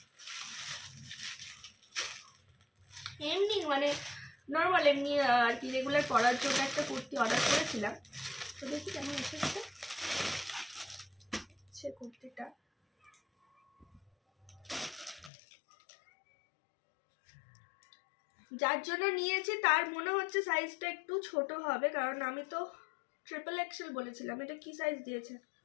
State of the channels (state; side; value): drops out; right; at 15.3 s